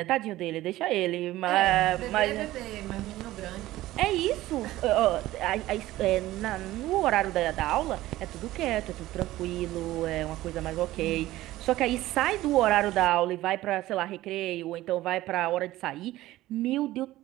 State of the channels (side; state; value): left; quieter; 16.1 dB